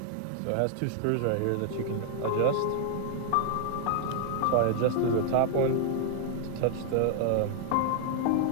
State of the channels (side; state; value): both; different; correlation 0.00